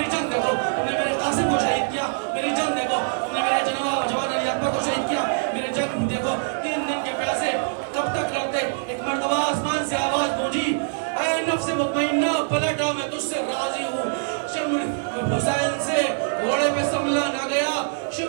جنگ دیکھو. تم نے میرے قاسم کو شہید کیا, میری جنگ دیکھو. تم نے میرے جوان علی اکبر کو شہید کیا, میری جنگ دیکھو. 3 دن کے پیاسے کب تک لڑتے. ایک مرتبہ آسمان سے آواز گونجی, اے نفس مطمئنہ پلٹا میں تجھ سے راضی ہوں. شمر حسین سے گھوڑے پہ سنبھلا نہ گیا,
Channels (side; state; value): left; silent; 60 dB below the other